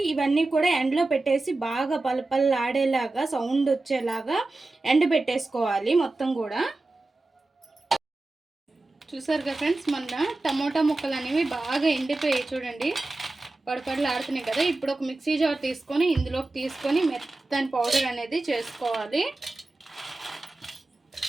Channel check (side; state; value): left; quieter; 3.0 dB